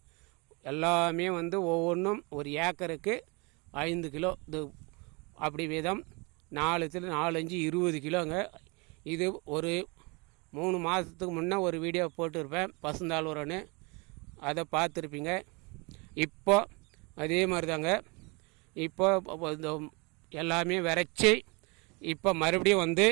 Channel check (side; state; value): left; quieter; 28.9 dB